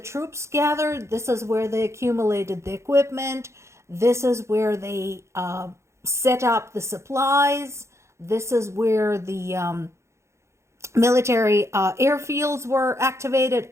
gathered. This is where they accumulated the equipment. This is where they set up the supplies. This is where the military airfields were activated,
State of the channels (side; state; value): left; late; 0.14 ms